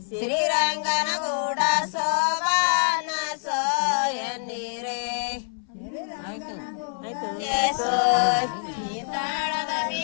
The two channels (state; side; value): silent; right; 59 dB below the other